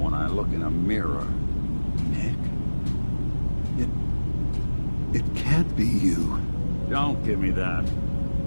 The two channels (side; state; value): both; inverted; correlation -1.00